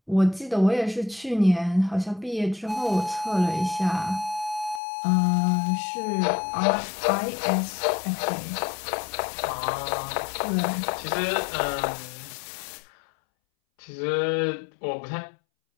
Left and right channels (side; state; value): right; drops out; at 4.8 s